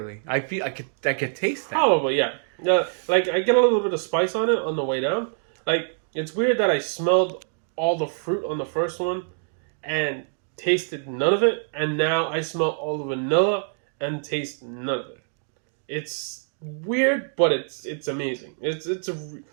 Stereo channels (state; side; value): silent; left; digital silence